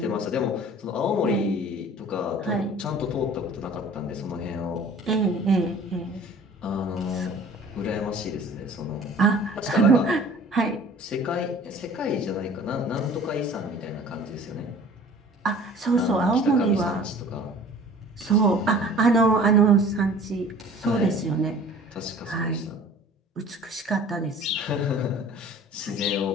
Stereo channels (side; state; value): both; normal; correlation 0.47